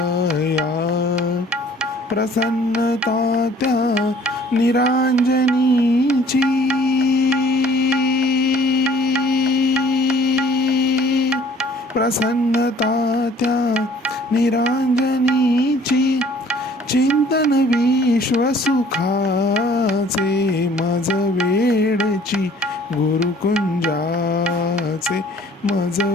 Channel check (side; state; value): both; normal; correlation 0.55